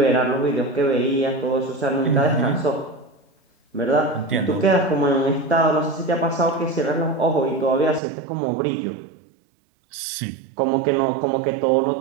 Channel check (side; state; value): left; drops out; at 8.0 s